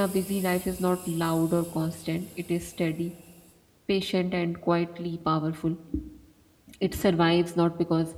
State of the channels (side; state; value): both; identical; correlation 1.00